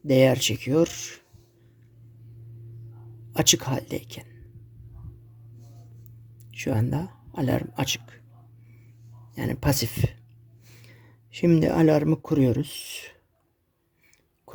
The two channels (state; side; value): identical; both; correlation 1.00